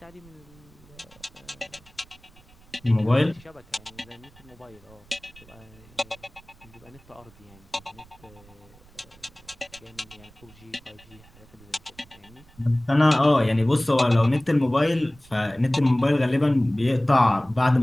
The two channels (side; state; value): right; noise; rumble, 26 dB below the sound